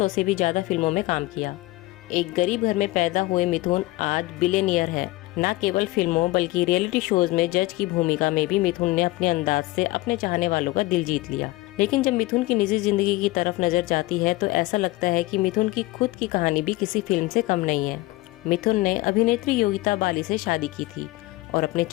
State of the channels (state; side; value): quieter; right; 19.6 dB